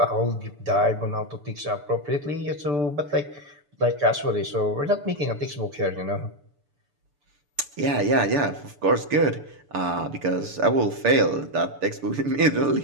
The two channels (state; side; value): late; left; 6.9 ms